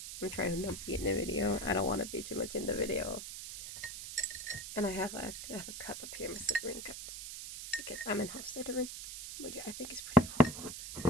I'm trying to not be in the video. I don't want to be too much in the video. And I have a cup up here, Mr. Green cup, because I'm in house littering, which I think is pretty cool.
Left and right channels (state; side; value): noise; right; hiss, 8 dB below the sound